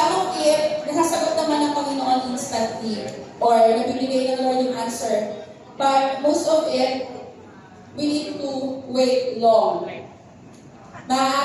of it, nasasagot naman ng Panginoon instantly. Or nabibigay ng Lord yung answer. But most of it, we need to wait long.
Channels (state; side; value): identical; both; correlation 1.00